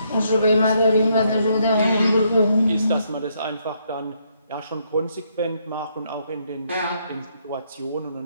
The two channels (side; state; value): both; inverted; correlation -0.73